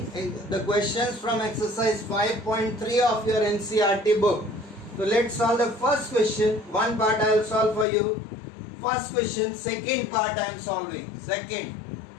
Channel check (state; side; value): drops out; right; at 7.9 s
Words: the questions from exercise 5.3 of your NCERT book. So let's solve the first question. One part I will solve for you. First question, second part I am solving. Second,